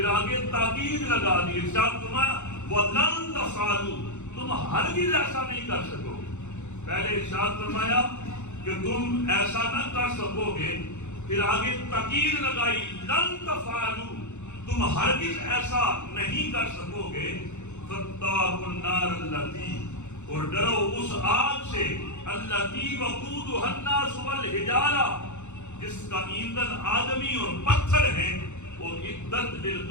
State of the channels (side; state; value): right; late; 0.83 ms